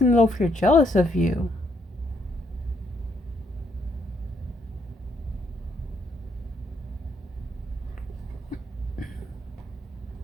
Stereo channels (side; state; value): both; normal; correlation 0.73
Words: is over here jealous of you.